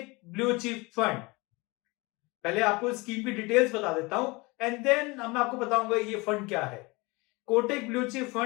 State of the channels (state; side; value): quieter; right; 25.0 dB